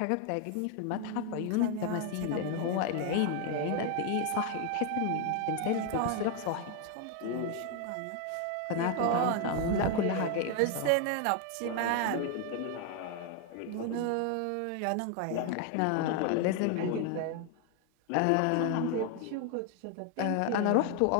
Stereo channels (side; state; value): both; different; correlation 0.01